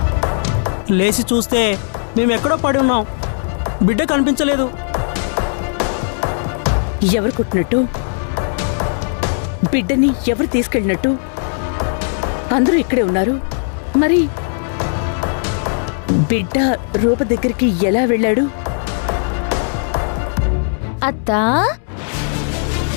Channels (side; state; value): right; silent; 68 dB below the other